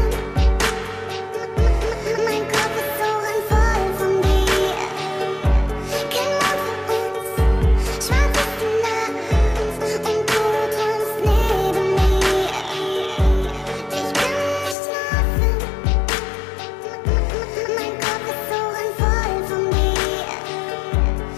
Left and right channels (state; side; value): drops out; right; at 14.8 s